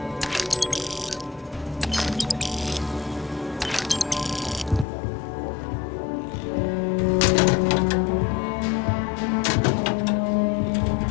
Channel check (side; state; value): right; drops out; at 4.9 s